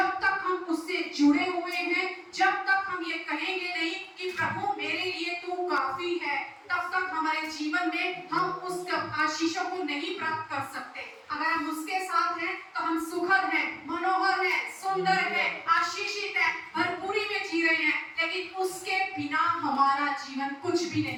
तक हम उससे जुड़े हुए हैं, जब तक हम ये कहेंगे नहीं कि प्रभु मेरे लिए तू काफी है, तब तक हमारे जीवन में हम उस आशीषों को नहीं प्राप्त कर सकते। अगर हम उसके साथ हैं तो हम सुखद हैं, मनोहर हैं, सुंदर हैं, आशीषित हैं, भरपूरी में जी रहे हैं। लेकिन उसके बिना हमारा जीवन कुछ भी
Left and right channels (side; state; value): both; identical; correlation 1.00